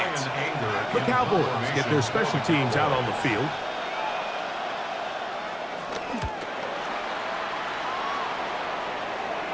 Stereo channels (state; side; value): identical; both; correlation 1.00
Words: The Cowboys get their special teams out on the field.